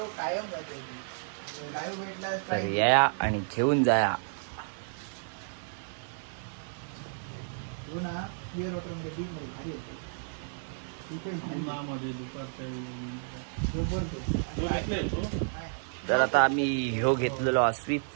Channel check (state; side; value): silent; left; 57 dB below the other